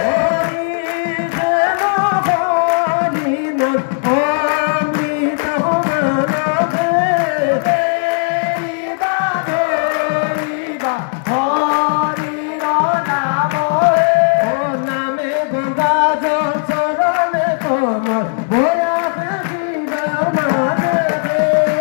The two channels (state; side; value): silent; right; 66 dB below the other